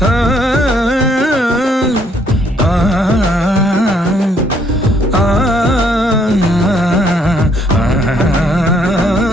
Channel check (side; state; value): both; normal; correlation 0.67